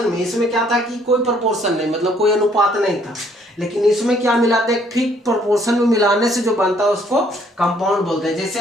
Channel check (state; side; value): normal; both; correlation 0.64